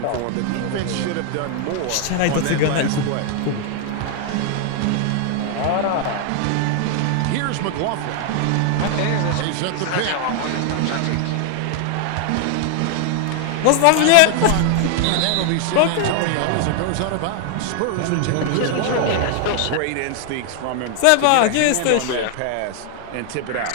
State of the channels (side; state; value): both; different; correlation 0.00